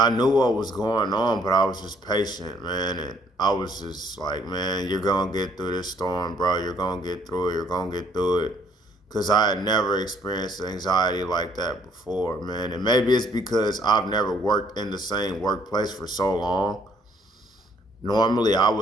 knew what was going on, but I was just patient, man. And I was just like, man, you're gonna get through this storm, bro. You're gonna get through it. You're gonna get through it. Cause I had never experienced anxiety like that before, man. And maybe it's because I've never worked in the same workplace for so long. Normally, I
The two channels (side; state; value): both; normal; correlation 0.64